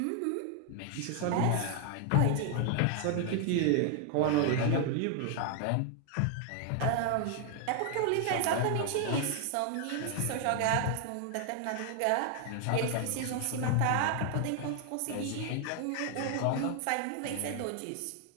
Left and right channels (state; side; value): different; both; correlation 0.00